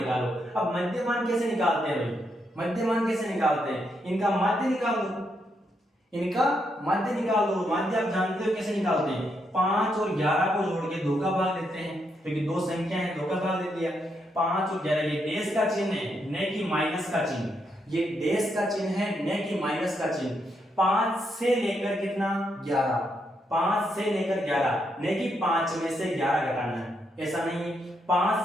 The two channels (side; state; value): both; normal; correlation 0.79